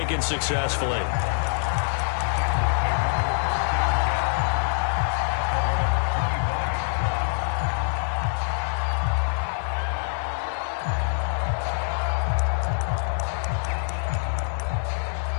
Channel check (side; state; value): right; silent; digital silence